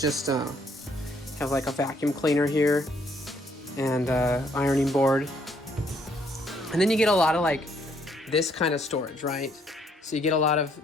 have like a vacuum cleaner here and ironing board. And then you get a lot of like this kind of storage, right? So you get a lot of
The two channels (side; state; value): both; normal; correlation 0.68